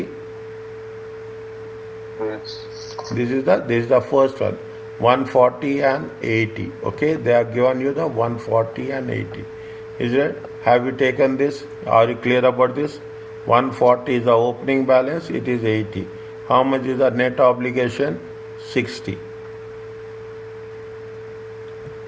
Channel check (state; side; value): identical; both; correlation 1.00